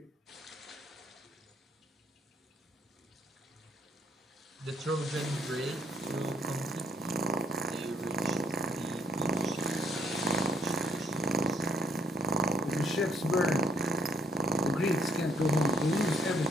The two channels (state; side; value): normal; both; correlation 0.66